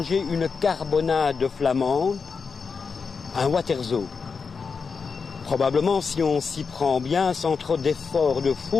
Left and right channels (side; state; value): right; quieter; 5.3 dB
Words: une carbonade flamande, un waterzo. Probablement, si on s'y prend bien, sans trop d'efforts de